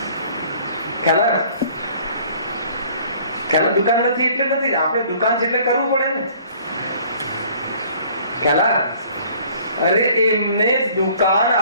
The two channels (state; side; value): inverted; both; correlation -0.54